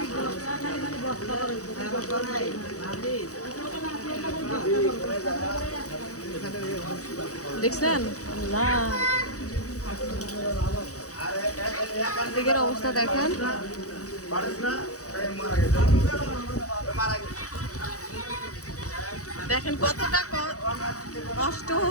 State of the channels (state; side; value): late; right; 0.66 ms